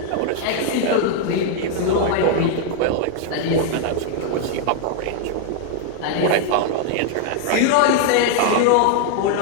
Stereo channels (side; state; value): both; different; correlation 0.00